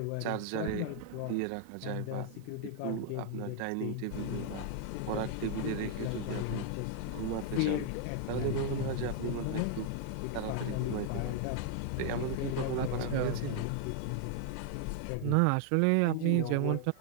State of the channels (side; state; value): both; different; correlation 0.00